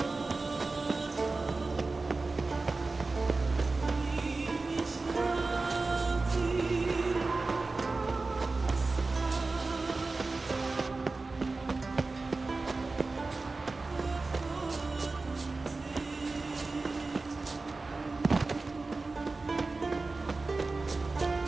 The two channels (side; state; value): left; quieter; 3.6 dB